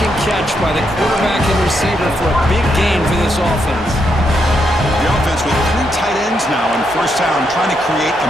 and catch by the quarterback and receiver for a big gain for this offense. The offense with 3 tight ends now on first down, trying to create a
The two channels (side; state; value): both; normal; correlation 0.79